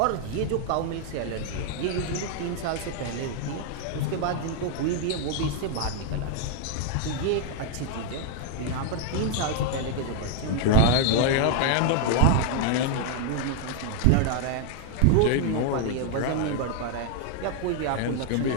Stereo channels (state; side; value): different; both; correlation 0.00